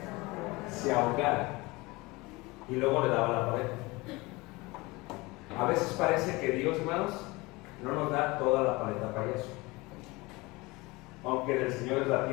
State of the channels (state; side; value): quieter; right; 23.2 dB